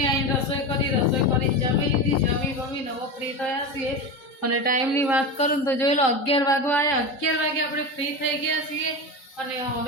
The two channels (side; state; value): right; late; 3.8 ms